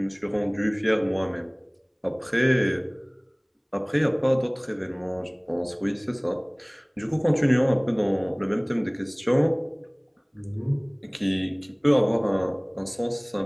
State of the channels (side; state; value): both; identical; correlation 1.00